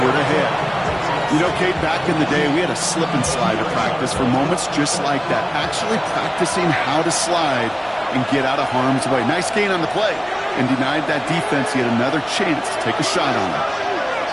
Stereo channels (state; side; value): identical; both; correlation 1.00